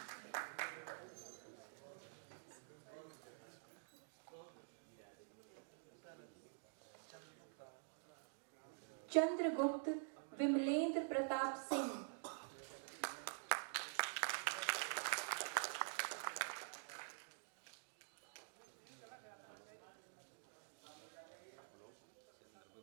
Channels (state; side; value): silent; left; digital silence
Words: चंद्रगुप्त विमलेंद्र प्रताप सिंह